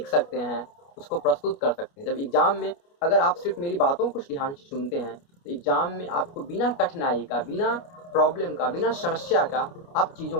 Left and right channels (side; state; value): right; late; 29 ms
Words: सकते हैं, उसको प्रस्तुत कर सकते हैं। जब एग्जाम में अगर आप सिर्फ मेरी बातों को ध्यान से सुनते हैं तो एग्जाम में आपको बिना कठिनाई का, बिना प्रॉब्लम का, बिना समस्या का आप